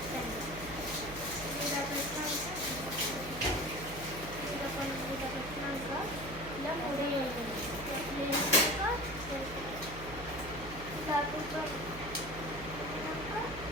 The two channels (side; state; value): right; noise; hum, 11 dB below the sound